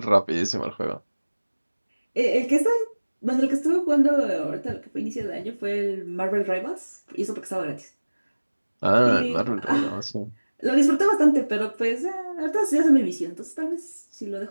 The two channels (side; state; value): both; inverted; correlation -1.00